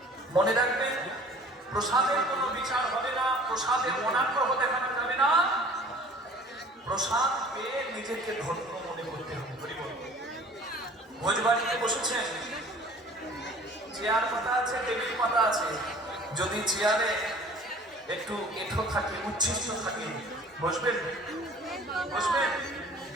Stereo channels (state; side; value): normal; both; correlation 0.48